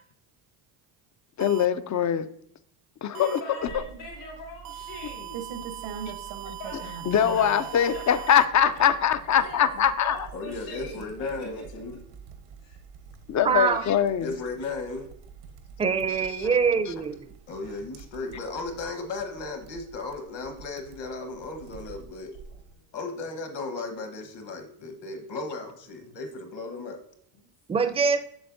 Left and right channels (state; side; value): quieter; right; 3.8 dB